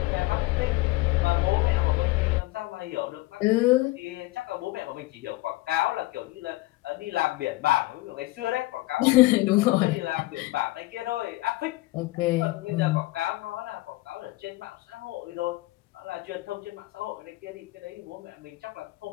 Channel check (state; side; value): quieter; right; 19.8 dB